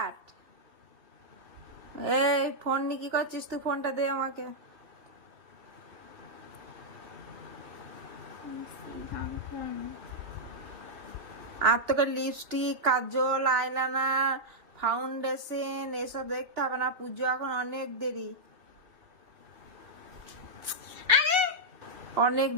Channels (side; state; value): left; late; 2.7 ms